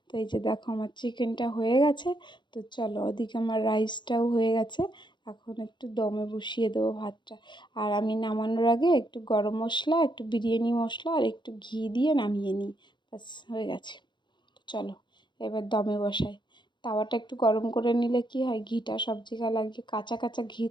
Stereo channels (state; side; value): late; right; 0.22 ms